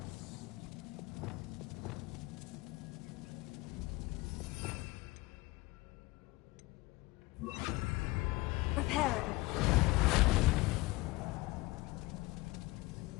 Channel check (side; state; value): right; quieter; 21.4 dB